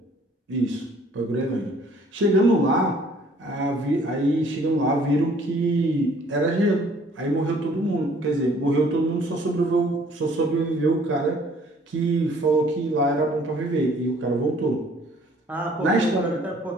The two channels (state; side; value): normal; both; correlation 0.58